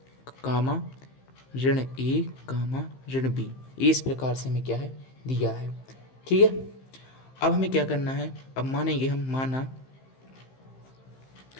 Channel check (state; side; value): late; right; 15 ms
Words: कामा ऋण ए कामा ऋण बी, इस प्रकार से हमें क्या है दिया है। ठीक है, अब हमें क्या करना है, अब मानेंगे हम,